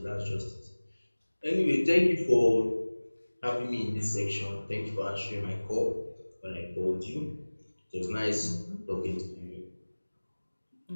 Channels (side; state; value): both; inverted; correlation -1.00